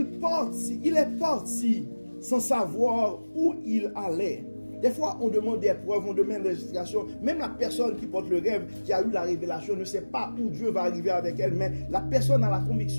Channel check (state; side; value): inverted; both; correlation -1.00